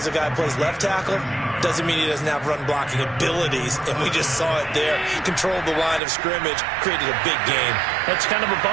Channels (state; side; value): drops out; left; at 6.0 s